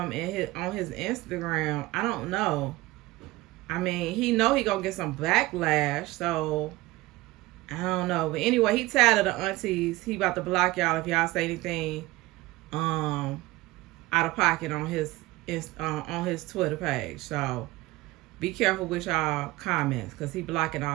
on his Instagram, I don't know. I mean, he know he gonna get some backlash, so I don't know. But anyway, he tired of the aunties. He about to block y'all if y'all say anything out of pocket on his Twitter page. So be careful with y'all comments, because he blocking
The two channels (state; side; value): quieter; left; 19.5 dB